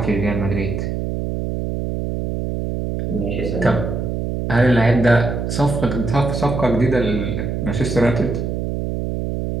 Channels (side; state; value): right; noise; hum, 2 dB below the sound